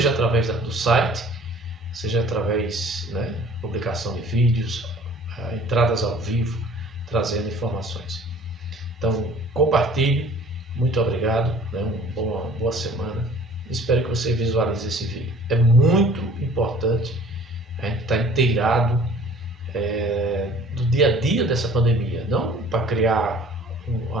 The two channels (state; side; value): normal; both; correlation 0.50